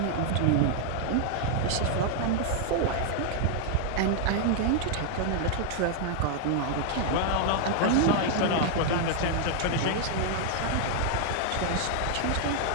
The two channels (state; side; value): different; both; correlation 0.00